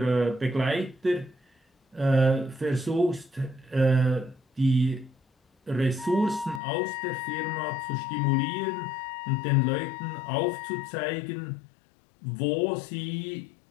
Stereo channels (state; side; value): drops out; right; at 6.6 s